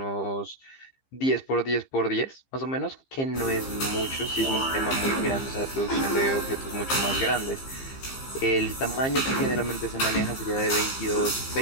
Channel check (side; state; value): right; late; 15 ms